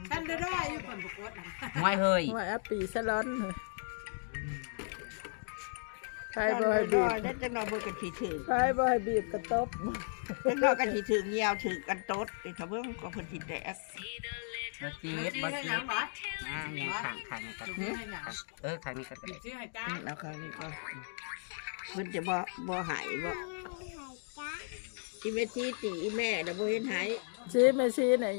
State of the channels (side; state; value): right; silent; digital silence